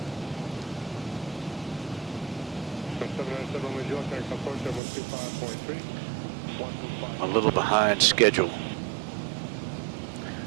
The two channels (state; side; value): drops out; left; at 4.8 s